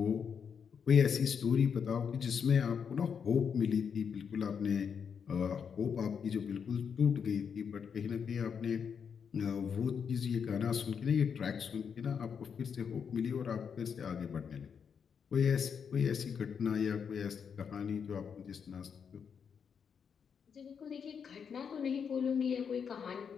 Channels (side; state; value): right; quieter; 6.9 dB